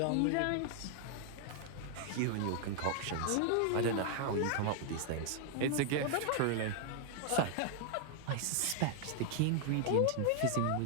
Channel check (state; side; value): different; both; correlation 0.00